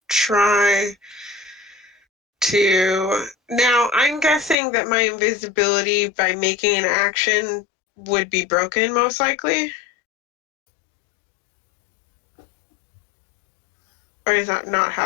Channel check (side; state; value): right; drops out; at 4.5 s